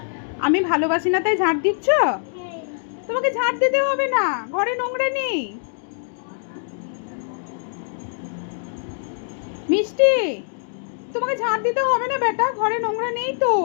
আমি ভালোবাসি না তাই ঝাড় দিচ্ছ? তোমাকে ঝাড় দিতে হবে না, ঘরে নোংরা নেই। মিষ্টি, তোমাকে ঝাড় দিতে হবে না বেটা, ঘরে নোংরা নেই তো।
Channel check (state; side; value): silent; right; digital silence